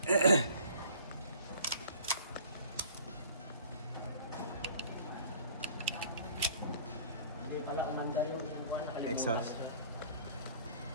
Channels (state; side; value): inverted; both; correlation -0.49